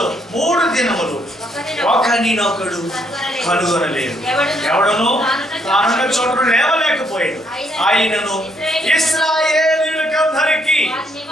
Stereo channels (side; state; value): both; normal; correlation 0.71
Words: 3 దినములు ఒకరినొకడు కనుగొనలేదు. ఎవడను తానున్న చోటు లేవలేకపోయాడు. ఆయనను ఇశ్రాయేలీయులకందరికీ